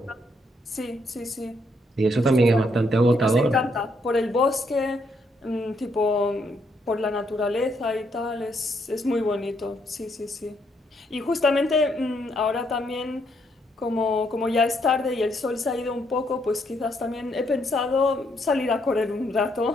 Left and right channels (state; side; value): normal; both; correlation 0.74